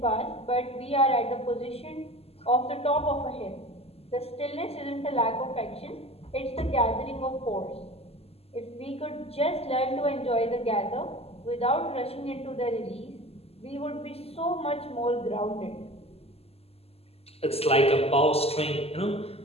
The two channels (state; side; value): late; right; 0.29 ms